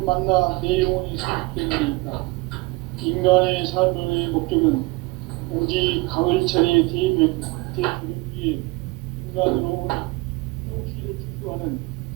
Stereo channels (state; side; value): quieter; left; 23.5 dB